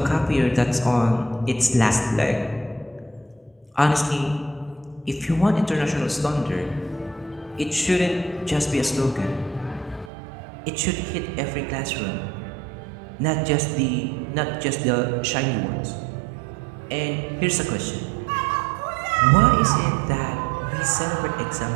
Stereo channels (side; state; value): left; drops out; at 10.1 s